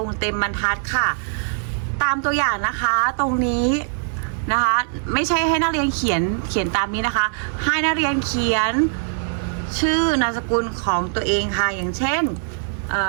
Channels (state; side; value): silent; left; digital silence